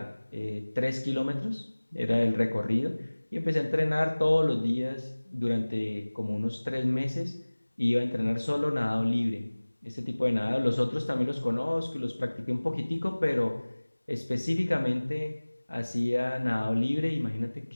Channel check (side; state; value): both; inverted; correlation -1.00